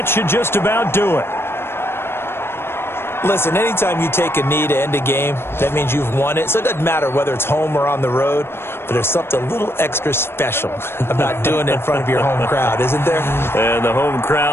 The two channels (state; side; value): late; right; 0.12 ms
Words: should just about do it. Listen, anytime you take a knee to end a game, that means you've won it. So it doesn't matter whether it's home or on the road, but there's something a little extra special about doing it in front of your home crowd, isn't there? And the home